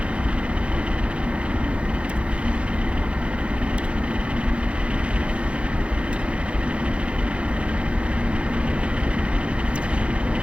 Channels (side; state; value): left; late; 0.060 ms